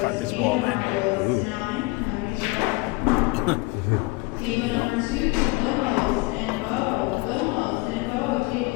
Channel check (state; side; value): quieter; right; 24.0 dB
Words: this ball in.